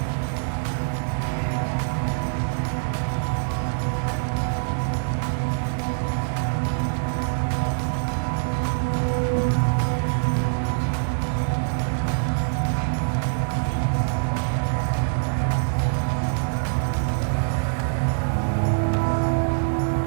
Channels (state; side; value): silent; left; digital silence